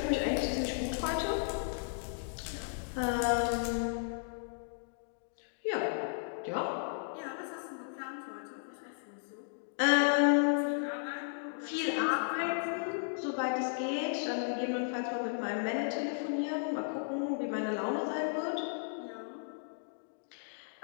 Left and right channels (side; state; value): right; silent; digital silence